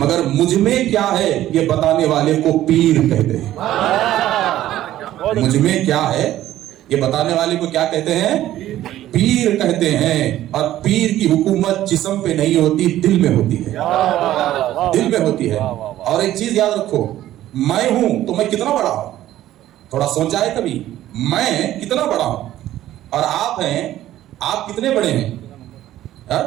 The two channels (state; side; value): quieter; left; 13.5 dB